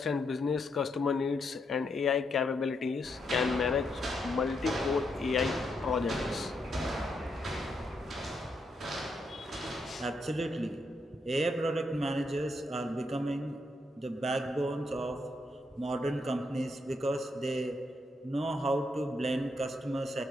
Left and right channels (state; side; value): normal; both; correlation 0.79